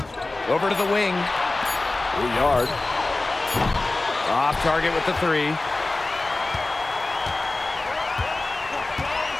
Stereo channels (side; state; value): right; quieter; 3.1 dB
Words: Over to the wing. Riard. Off target with the 3.